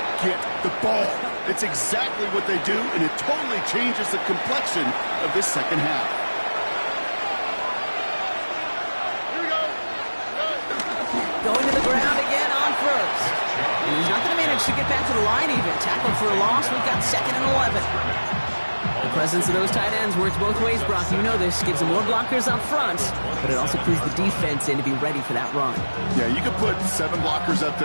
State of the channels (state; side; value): inverted; both; correlation -1.00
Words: get the ball. It's exactly what they do, and it totally changes the complexion of this second half. Here we go. Going to the ground again on first. And he's not going to manage to get back to the line even. Tackled for a loss. We've got 2nd and 11. The presence of those tight ends works both ways, Brock. You know this. Gives them more blockers up front, but it also clues the defense in to be ready for that run. Yeah, you could put 7 blockers up